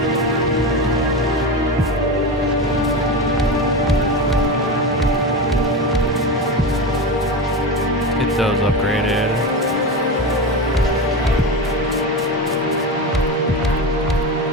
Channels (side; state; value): both; normal; correlation 0.21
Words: Get those upgraded.